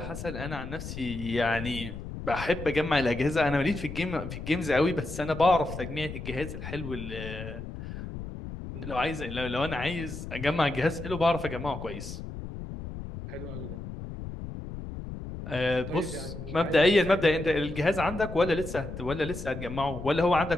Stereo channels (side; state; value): left; noise; rumble, 9 dB below the sound